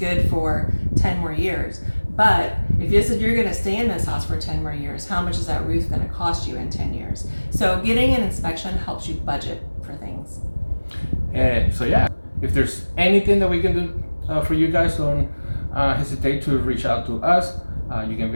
for 10 more years. But if you said you're going to stay in this house for 10 more years, how much is that roof going to cost you in 10 years? So getting an inspection helps you budget for things. If there's anything that we can do for you guys, don't hesitate to reach out to us. You can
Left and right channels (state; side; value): inverted; both; correlation -1.00